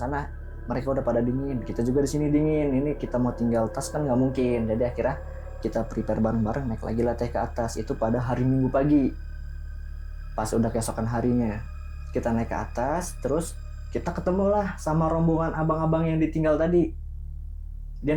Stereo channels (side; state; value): both; identical; correlation 1.00